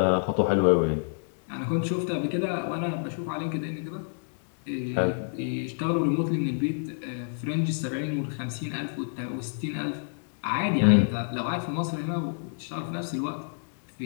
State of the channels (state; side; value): silent; right; digital silence